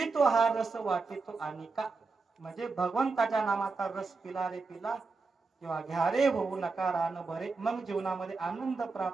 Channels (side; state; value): left; quieter; 4.2 dB